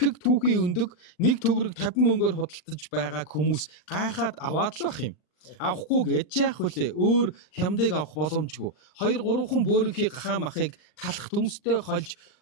түүхийн өндөг 1 төгрөг 50 мөнгөөр худалдаж байгааг хүмүүс гайхаад аваад л ах юм. Авахгүй гэж яах вүлээ өөр хямдыг авах боломжгүй 2 3 хүн бөөрийнхий гахаа махыг талах төмстэй хольж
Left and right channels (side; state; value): right; late; 39 ms